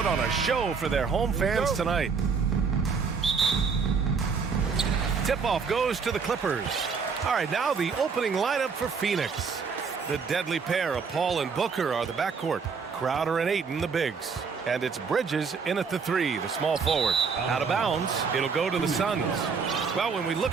on a show for their home fans tonight. Tip-off goes to the Clippers. All right, now the opening lineup for Phoenix. The deadly pair of Paul and Booker are the backcourt. Crowder and Ayton, the bigs. And it's Bridges in at the 3, the small forward. Out of bounds, it'll go to the Suns. Well, when we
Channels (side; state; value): left; quieter; 5.5 dB